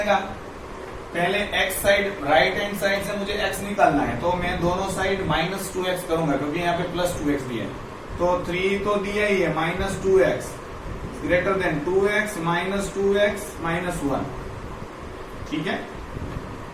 पहले x side, right hand side से मुझे x निकालना है, तो मैं दोनों साइड -2x करूंगा क्योंकि यहाँ पे +2x दिया है। तो 3 तो दिया ही है, -2x greater then 2x - 2x - 1, ठीक है।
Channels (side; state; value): both; identical; correlation 1.00